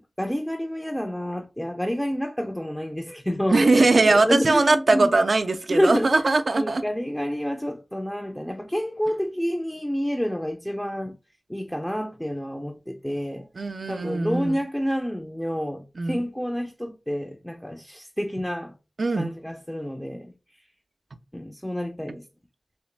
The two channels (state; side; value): normal; both; correlation 0.98